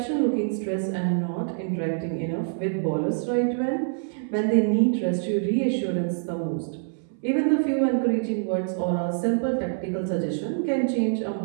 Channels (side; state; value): left; silent; 61 dB below the other